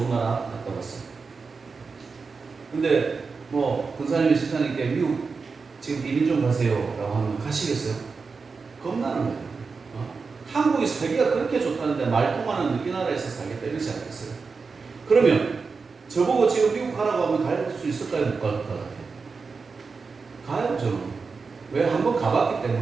나라 갔다 왔어요. 근데 뭐 군사님이 집사님께 미국 지금 이민 좀 가세요 라고 하면 가시겠어요? 겁나는 거예요. 한국이 살기가 그렇게 좋다는데 말통하는 이 나라에서 살겠다 이러지 않겠어요? 그러면 저보고 지금 미국 가라고 하면 갈 수 있을까요? 못 갈 것 같아요? 가요, 저는. 왜? 한번 가봤기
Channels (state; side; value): quieter; left; 4.7 dB